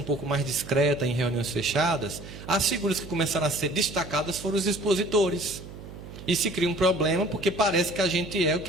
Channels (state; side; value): noise; right; hum, 14 dB below the sound